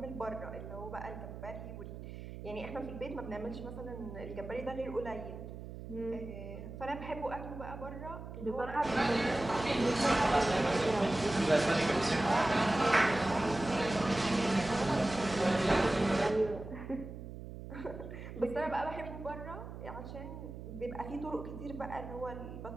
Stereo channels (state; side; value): noise; right; hum, 11 dB below the sound